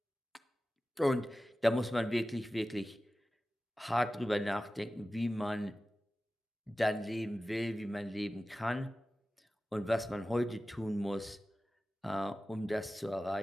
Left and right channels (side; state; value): both; normal; correlation 0.95